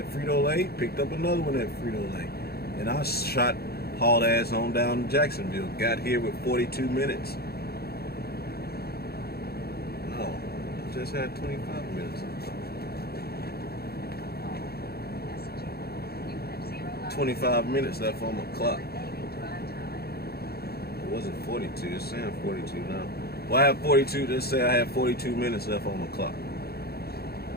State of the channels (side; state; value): right; late; 0.46 ms